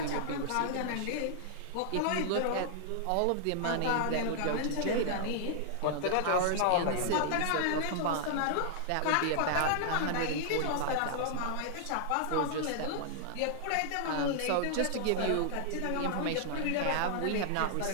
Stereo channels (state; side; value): different; both; correlation -0.01